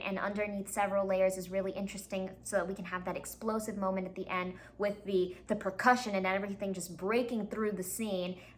underneath several layers is really interesting, so that we can have that explosive moment at the end with the percussion and everything just breaking through the scene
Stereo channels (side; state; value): both; identical; correlation 1.00